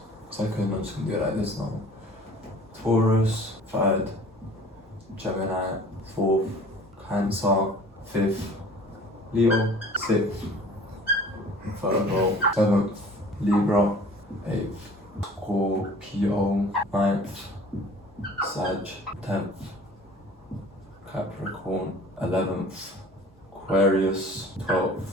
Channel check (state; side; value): normal; both; correlation 0.47